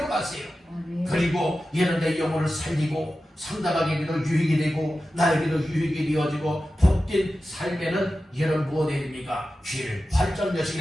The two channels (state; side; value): normal; both; correlation 0.93